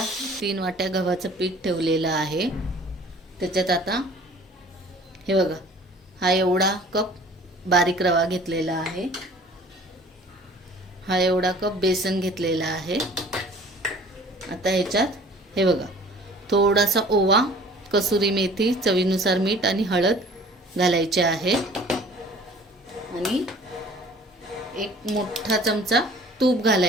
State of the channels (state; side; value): normal; both; correlation 0.49